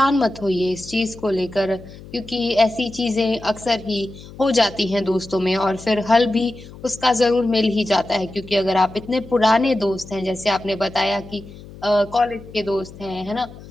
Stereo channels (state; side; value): noise; left; hum, 17 dB below the sound